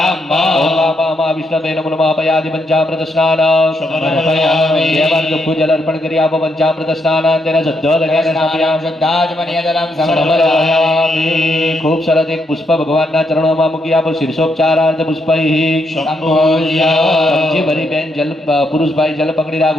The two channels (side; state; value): both; normal; correlation 0.78